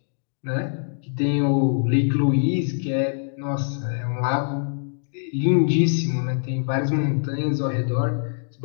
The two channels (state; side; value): silent; right; digital silence